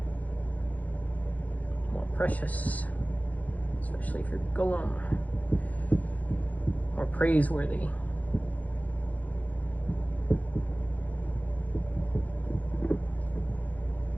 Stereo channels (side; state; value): right; late; 0.076 ms